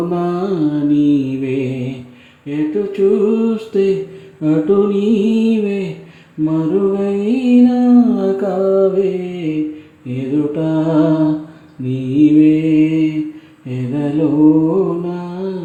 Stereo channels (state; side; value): identical; both; correlation 1.00